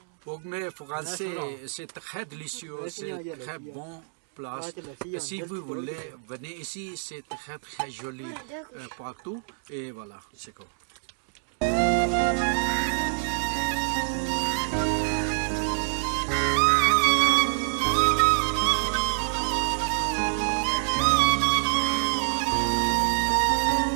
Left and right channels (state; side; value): silent; left; digital silence